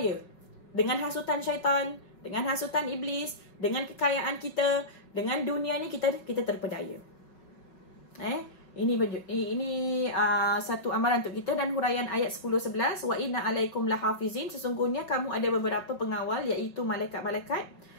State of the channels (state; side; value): late; right; 5.4 ms